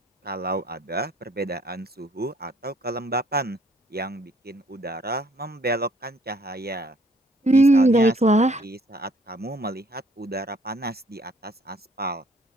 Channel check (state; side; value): normal; both; correlation 0.63